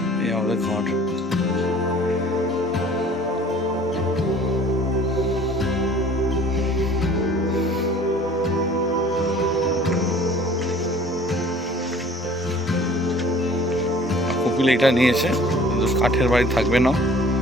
এই আমাদের ঘর। কপিল এটা নিয়েছে, কিন্তু কাঠের বাড়ি থাকবে না,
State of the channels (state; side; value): normal; both; correlation 0.50